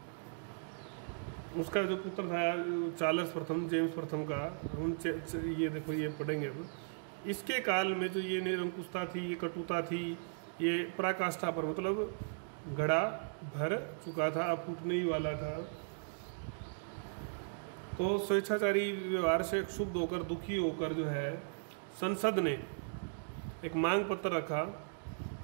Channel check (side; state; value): left; silent; digital silence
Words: चार्ल्स प्रथम, जेम्स प्रथम का, हम ये देखो ये पढ़ेंगे अब। इसके काल में जो ये निरंकुशता थी, ये कटुता थी, ये पराकाष्ठा पर, मतलब घड़ा भर चुका था, अब फूटने ही वाला था। तो स्वेच्छाचारी व्यवहार से क्षुब्ध होकर, दुखी होकर जो है संसद ने एक मांग पत्र रखा